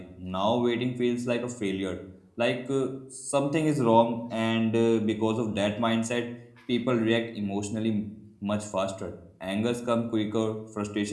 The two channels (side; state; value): both; identical; correlation 1.00